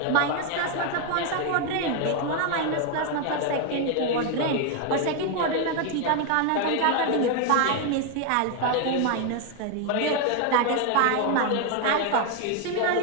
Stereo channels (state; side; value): different; both; correlation 0.01